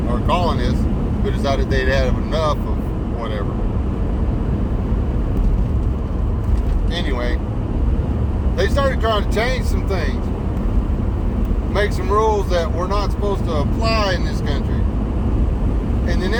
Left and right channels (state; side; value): identical; both; correlation 1.00